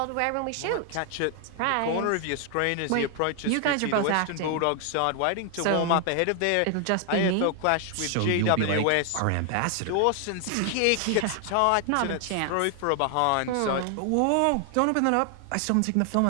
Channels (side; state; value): both; different; correlation 0.00